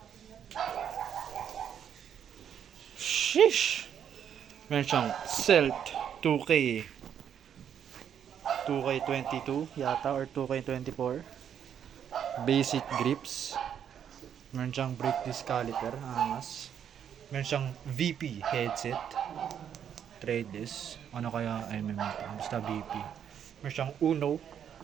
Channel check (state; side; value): quieter; left; 8.8 dB